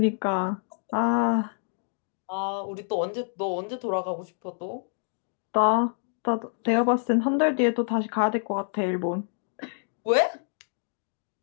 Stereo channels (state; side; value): silent; right; digital silence